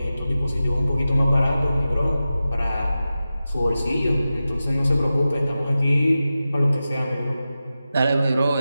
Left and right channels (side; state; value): both; inverted; correlation -0.94